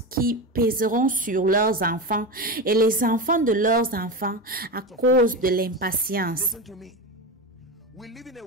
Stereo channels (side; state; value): both; normal; correlation 0.20